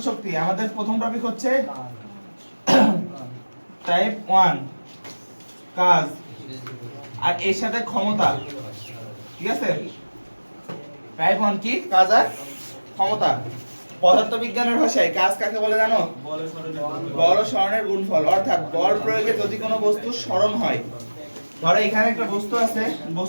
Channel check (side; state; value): both; inverted; correlation -1.00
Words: শক্তি আমাদের প্রথম টপিক হচ্ছে টাইপ 1 কাজ আর এর সাথে ক্ষমতা ঠিক আছে টাইপ 1 কি কাজ আর ক্ষমতা পদার্থবিজ্ঞানের ভাষায় কাজ কাকে বলে জানো বল ও সরণের গুণফল অর্থাৎ বল প্রয়োগে যদি কোনো বস্তু সরণ হয় ধরো এখানে একটা বস্তু আছে